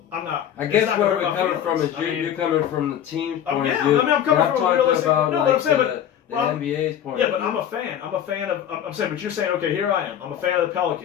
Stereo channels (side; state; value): right; quieter; 9.9 dB